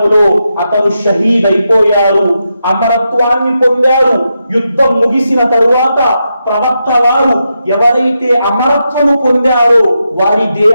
అతను షహీద్ అయిపోయారు. అమరత్వాన్ని పొందారు. యుద్ధం ముగిసిన తరువాత ప్రవక్త వారు ఎవరైతే అమరత్వము పొందారో వారి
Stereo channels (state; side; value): inverted; both; correlation -0.86